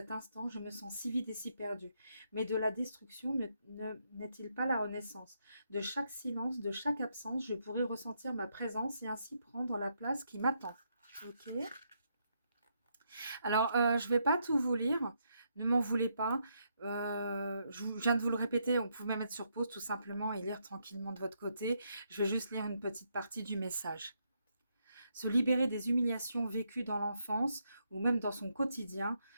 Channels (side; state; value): both; inverted; correlation -0.77